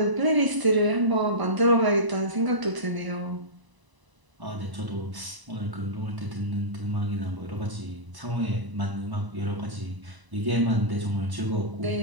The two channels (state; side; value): late; left; 1.0 ms